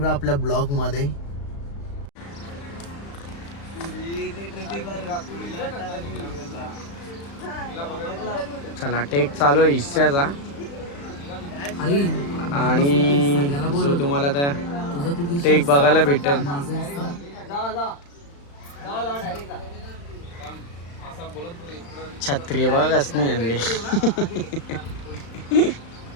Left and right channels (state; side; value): late; right; 35 ms